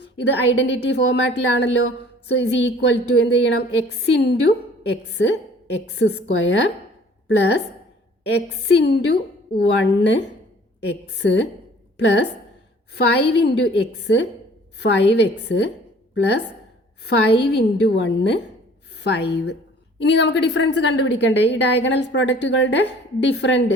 ഇത് ഐഡൻറ്റിറ്റി ഫോർമാറ്റിലാണല്ലോ. സോ ഇസ് ഈക്വൽ ടു എന്ത് ചെയ്യണം? X into x x square plus x into 1 x plus 5 into x 5x plus 5 into 1 5. ഇനി നമുക്ക് ഡിഫറൻസ് കണ്ടുപിടിക്കണ്ടേ? ഈ ഡയഗണൽ പ്രോഡക്റ്റുകളുടെ different.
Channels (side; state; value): both; normal; correlation 0.52